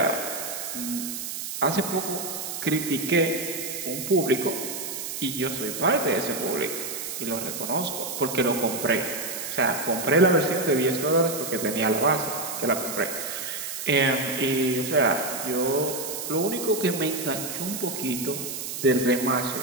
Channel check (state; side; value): noise; right; hiss, 6 dB below the sound